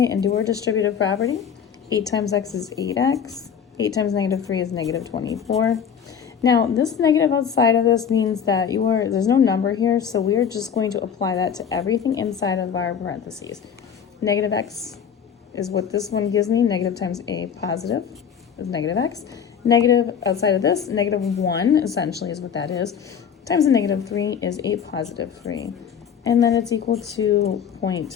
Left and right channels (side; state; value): right; quieter; 7.7 dB